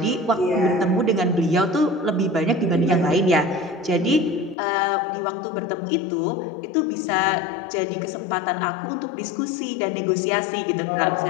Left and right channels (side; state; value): right; drops out; at 4.5 s